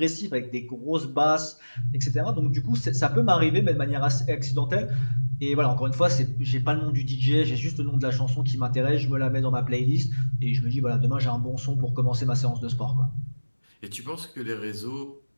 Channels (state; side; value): inverted; both; correlation -1.00